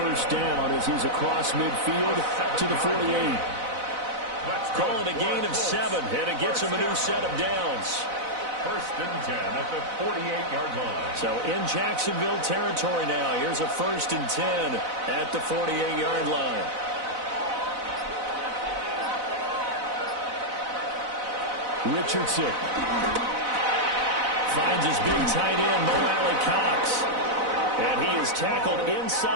down as he's across midfield to the 48. Call it a gain of 7, and it gets him a new set of downs. First and 10 at the 48-yard line. So in Jacksonville territory now. Here's a 1st and 10 at the 48-yard line. Richardson finds his big tight end, Mo Alley Cox. And he is tackled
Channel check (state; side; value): late; left; 4.0 ms